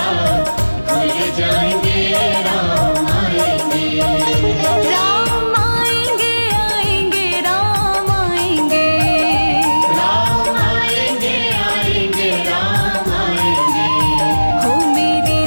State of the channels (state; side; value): inverted; both; correlation -1.00